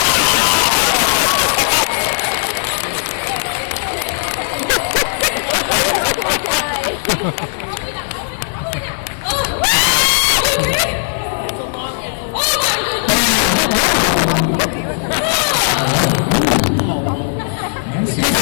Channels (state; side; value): silent; right; digital silence